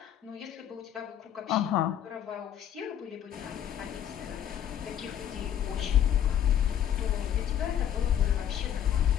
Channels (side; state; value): right; quieter; 10.0 dB